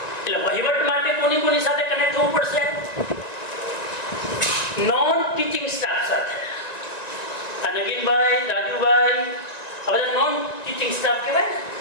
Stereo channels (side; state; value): right; late; 1.9 ms